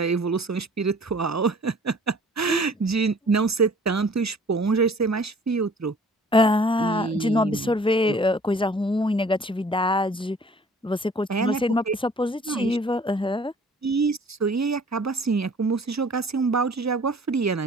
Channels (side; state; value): both; normal; correlation 0.52